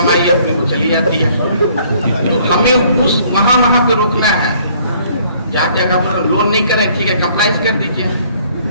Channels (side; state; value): both; inverted; correlation -0.61